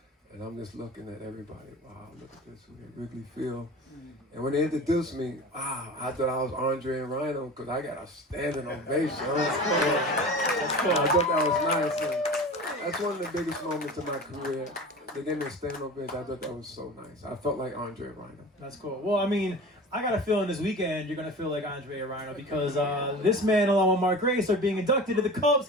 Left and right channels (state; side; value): normal; both; correlation 0.36